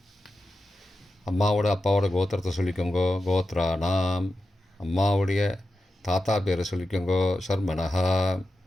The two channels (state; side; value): normal; both; correlation 0.91